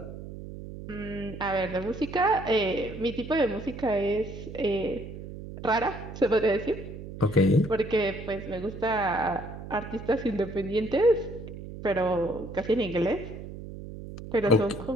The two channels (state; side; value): noise; right; hum, 11 dB below the sound